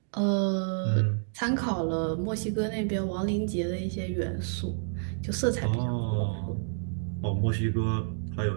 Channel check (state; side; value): silent; left; digital silence